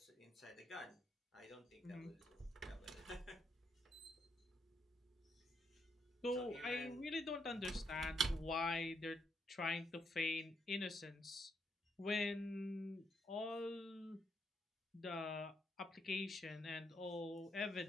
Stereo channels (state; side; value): normal; both; correlation 0.77